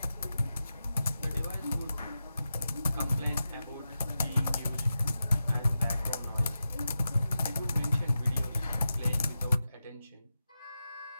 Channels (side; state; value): both; inverted; correlation -0.91